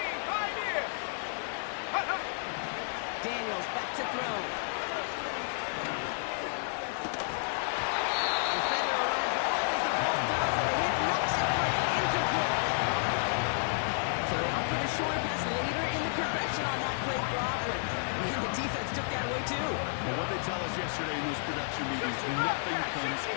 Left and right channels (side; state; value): right; silent; 57 dB below the other